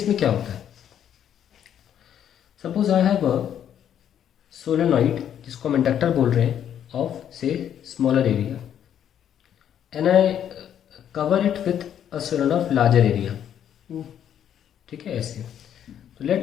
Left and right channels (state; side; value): quieter; right; 9.7 dB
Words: क्या होता है. Suppose I have a solenoid जिसको हम इंडक्टर बोल रहे हैं ऑफ से smaller area and I cover it with a solenoid of larger area. ठीक है ऐसे. तो